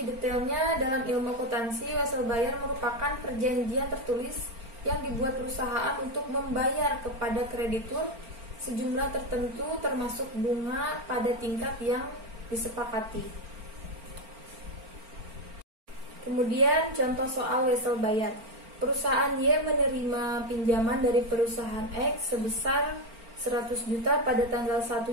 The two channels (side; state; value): left; late; 4.4 ms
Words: detailnya dalam ilmu akuntansi, wesel bayar merupakan perjanjian tertulis yang dibuat perusahaan untuk membayar kepada kreditur sejumlah tertentu termasuk bunga pada tingkat yang disepakati. Kemudian contoh soal wesel bayar. Perusahaan Y menerima pinjaman dari perusahaan X sebesar 100 juta pada tanggal 1